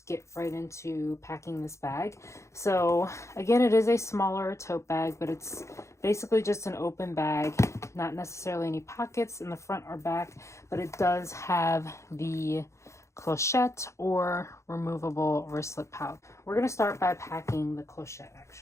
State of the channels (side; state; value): right; late; 0.14 ms